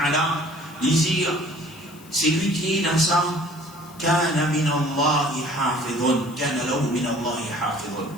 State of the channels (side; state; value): left; noise; hiss, 23 dB below the sound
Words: dit c'est lui qui est dans ça. Kana min Allah hafidun, kana lahu min Allah hafidun.